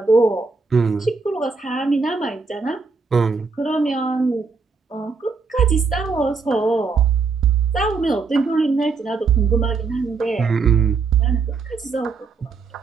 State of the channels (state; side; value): quieter; left; 4.6 dB